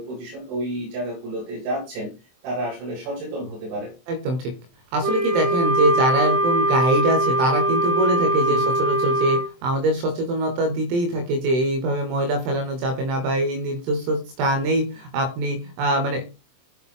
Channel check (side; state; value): left; late; 23 ms